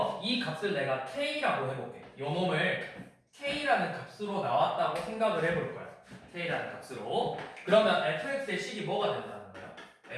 이 값을 내가 k라고 해볼게. 요 놈을 k라는 값으로 나왔다고 생각을 해볼 거야. k라는 값으로. 그러면 fx의 식이 뭐가 된다는 거야?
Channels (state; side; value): identical; both; correlation 1.00